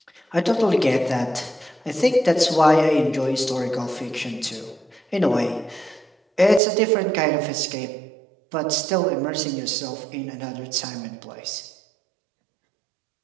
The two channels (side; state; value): left; drops out; at 6.6 s